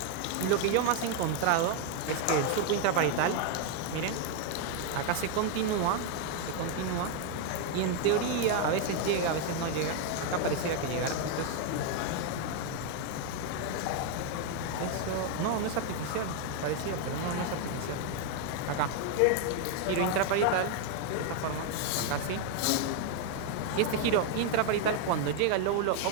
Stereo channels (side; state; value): both; different; correlation 0.01